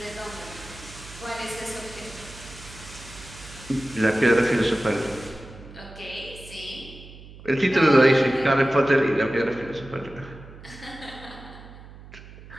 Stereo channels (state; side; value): noise; right; hum, 18 dB below the sound